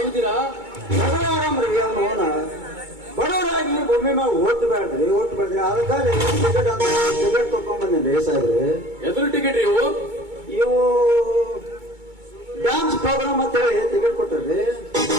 ಆರಾಮ್ರಿ. ಅವನು ಬಡವರಾಗಿ ಭೂಮಿ ಮ್ಯಾಗ ಓಟ್ ಬೇಡ್ರಿ ಅದಕ್ಕಾಗಿ ಟಿಕೆಟ್ ತಕೊಂಡ್ ಬಂದೇನ್ರಿ ಸಾಹೇಬ್ರಿ. ಎದುರು ಟಿಕೆಟ್ ರೀ ಇವು ಡ್ಯಾನ್ಸ್ ಪ್ರೋಗ್ರಾಮ್ ಅಂತ ಹೇಳಿ ಟಿಕೆಟ್ ಕೊಟ್ಟಾರ್ರಿ.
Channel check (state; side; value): late; left; 2.2 ms